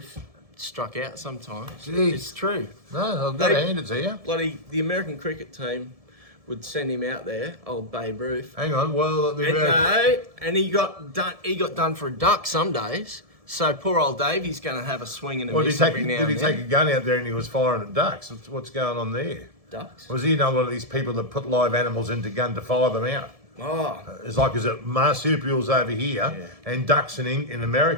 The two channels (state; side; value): late; left; 1.7 ms